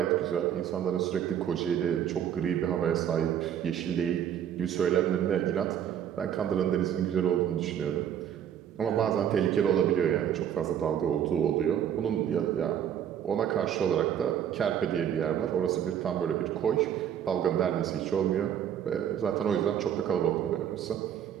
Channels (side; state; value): left; quieter; 9.5 dB